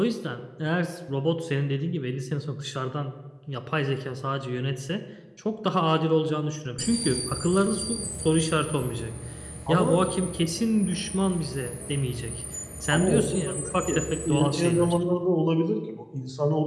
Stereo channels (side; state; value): both; identical; correlation 1.00